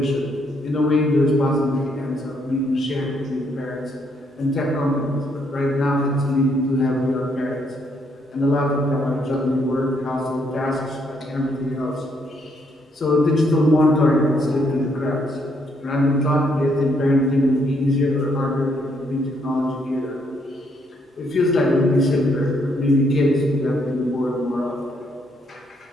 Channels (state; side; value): normal; both; correlation 0.72